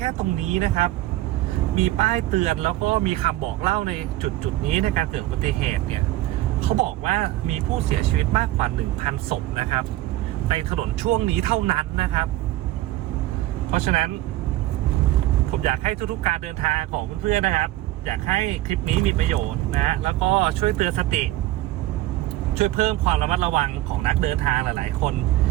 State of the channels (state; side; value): quieter; left; 16.0 dB